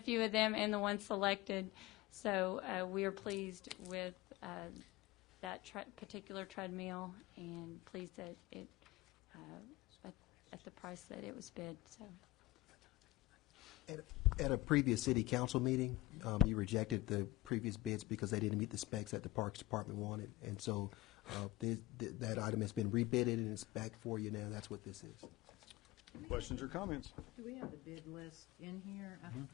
of them and the ones selected. So we are pleased with that particular treadmill and pleased that it at the price that it was bid. So. At a previous city council meeting, you rejected the previous bids because they didn't meet the specs that the Parks Department wanted. And so that item has been rebidded and it's back for you now. That's what this is. Questions or comments? Do we have the bid list in here? I'm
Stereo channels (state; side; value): quieter; right; 18.5 dB